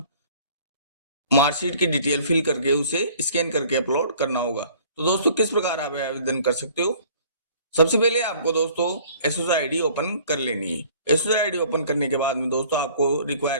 मार्कशीट की डिटेल फिल करके उसे स्कैन करके अपलोड करना होगा। तो दोस्तों, किस प्रकार आप आवेदन कर सकते हो। सबसे पहले आपको दोस्तों एसएससी आईडी ओपन कर लेनी है। एसएससी आईडी ओपन करने के बाद में दोस्तों आपको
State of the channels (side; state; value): both; inverted; correlation -0.53